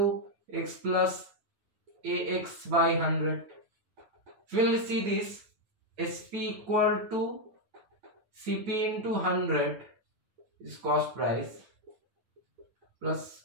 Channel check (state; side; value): late; left; 9.2 ms